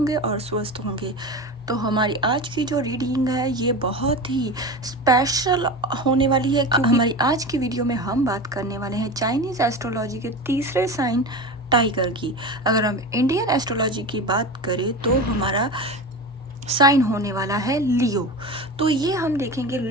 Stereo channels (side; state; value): both; normal; correlation 0.27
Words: और स्वस्थ होंगे। तो हमारी आज की जो रीडिंग है ये बहुत ही स्पेशल होने वाली है, क्योंकि हमारी आज की वीडियो में हम बात करने वाले हैं चाइनीज़ एस्ट्रोलॉजी के तीसरे साइन टाइगर की। अगर हम इंडियन एस्ट्रोलॉजी की बात करें तो हमारा साइन होने वाला है लियो। तो ये हम देखेंगे